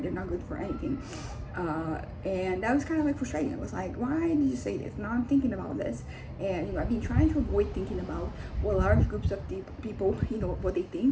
they're not good for anything. And that was kind of like frustrating. It was like, why did you say this? Now I'm thinking about this, and I've been trying to avoid thinking about what large groups of people, what they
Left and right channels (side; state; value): both; identical; correlation 1.00